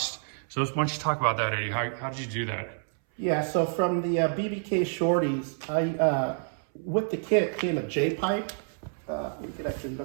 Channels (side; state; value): left; silent; 59 dB below the other